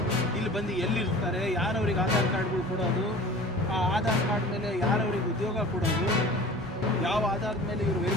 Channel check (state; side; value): normal; both; correlation 0.42